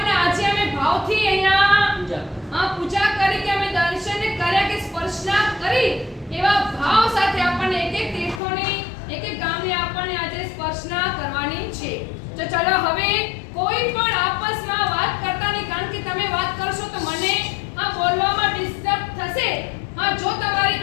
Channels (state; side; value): drops out; right; at 8.4 s